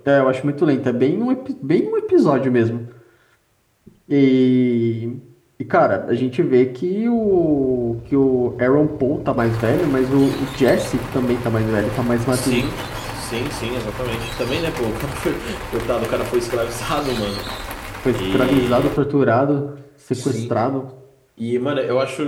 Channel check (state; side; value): identical; both; correlation 1.00